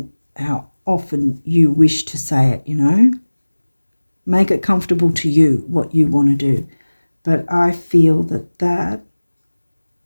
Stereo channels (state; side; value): inverted; both; correlation -1.00